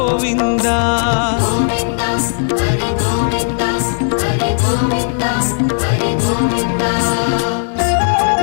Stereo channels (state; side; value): silent; right; 58 dB below the other